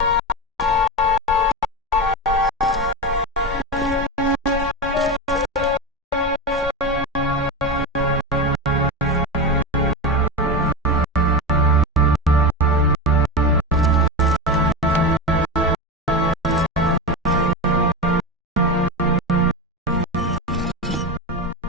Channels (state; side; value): normal; both; correlation 0.19